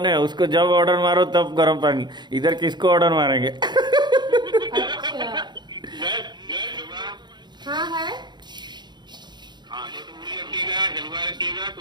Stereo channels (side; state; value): left; late; 0.21 ms